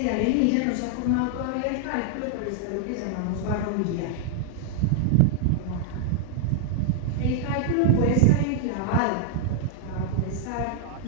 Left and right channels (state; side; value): different; both; correlation 0.00